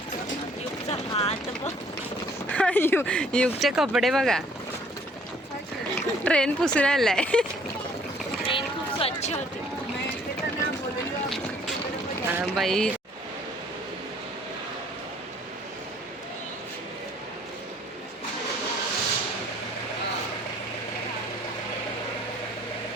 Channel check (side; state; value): both; normal; correlation 0.59